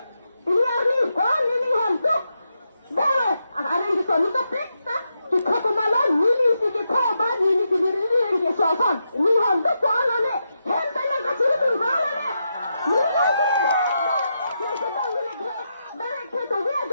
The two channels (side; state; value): both; inverted; correlation -0.84